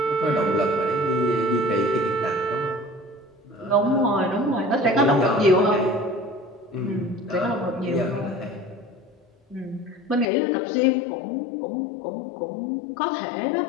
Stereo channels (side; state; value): right; drops out; at 10.2 s